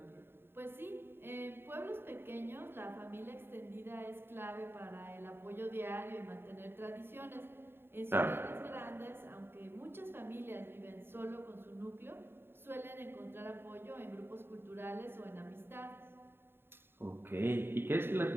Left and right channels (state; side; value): late; left; 0.11 ms